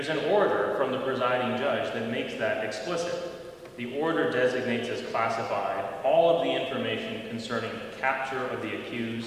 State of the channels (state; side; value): identical; both; correlation 1.00